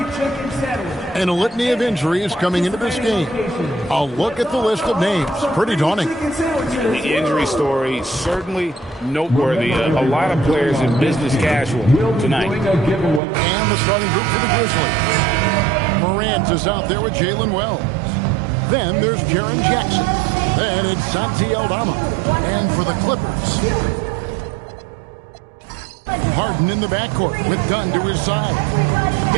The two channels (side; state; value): left; drops out; at 13.2 s